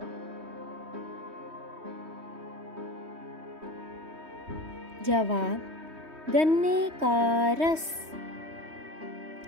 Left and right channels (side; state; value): left; late; 3.2 ms